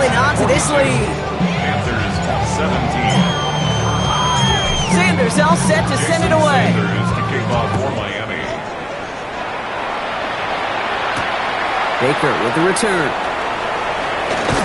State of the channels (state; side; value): identical; both; correlation 1.00